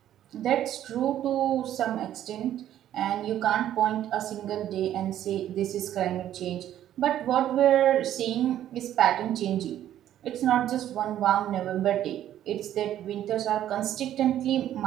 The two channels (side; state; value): left; quieter; 11.7 dB